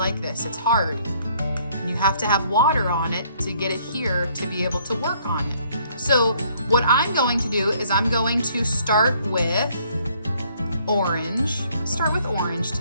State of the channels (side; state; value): both; inverted; correlation -0.64